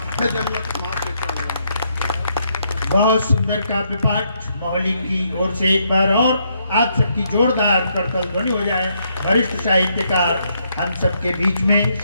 है जन्नत माँ के चरणों में। बहुत सुंदर काव्य पाठ मौली की ओर से एक बार और आप सबकी जोरदार करतल ध्वनि हो जाए। वरिष्ठ साहित्यकार हम सबके बीच में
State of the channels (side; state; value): both; inverted; correlation -0.75